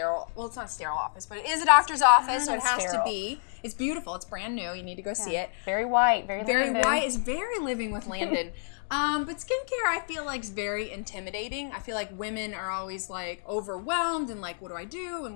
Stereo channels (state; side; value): silent; right; digital silence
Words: well, it's not a sterile office, but it is a doctor's office, so it has to be. It's beautiful. It's brand new. You need to go see it. Very white. Very Landyn. White. It's very Living with Landyn. But skincare, I feel like, is very intimidating. I feel like women are always like overwhelmed and like, what do I do